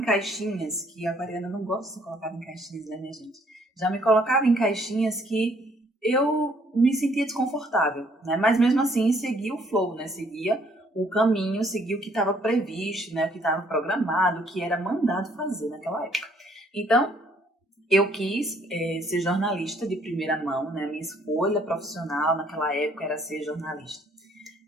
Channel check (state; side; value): normal; both; correlation 0.64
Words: que a aquariana não gosta de ser colocada em caixinhas, né, minha gente? Já me colocava em caixinhas que eu me sentia desconfortável, né? Mas mesmo assim seguia o flow, né? Seguia o caminho, seguia o que estava previsto, né? O que estava programado, o que era mandado fazer naquela época. Então, eu quis ser jornalista de primeira mão, né? Minha escolha profissional naquela época era ser jornalista.